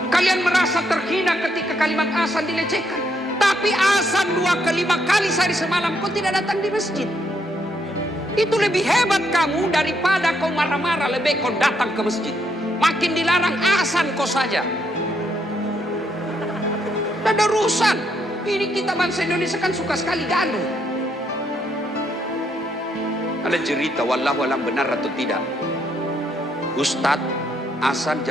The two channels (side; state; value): both; normal; correlation 0.74